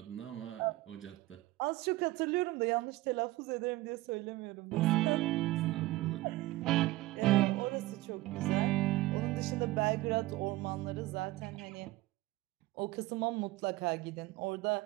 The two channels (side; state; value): left; quieter; 18.4 dB